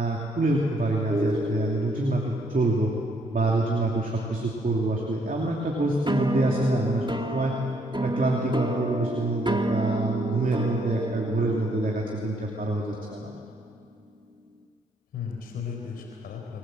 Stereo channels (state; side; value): normal; both; correlation 0.70